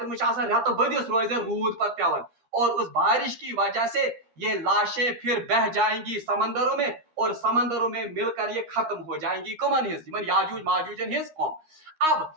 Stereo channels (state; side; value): late; left; 13 ms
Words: में रत बदिस रोज रूद पर पेवन, और उस बारिश की वजह से ये लाशें फिर बह जाएंगी समंदरों में, और समंदरों में मिलकर ये खत्म हो जाएंगी कमन हिज याजूज माजूजन हिज कौम। अब